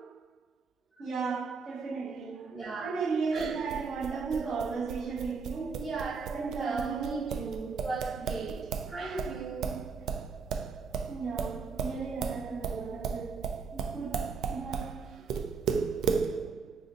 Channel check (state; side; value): quieter; left; 5.0 dB